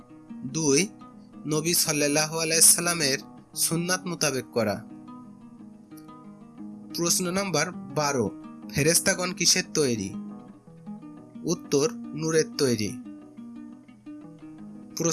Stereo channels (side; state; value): both; identical; correlation 1.00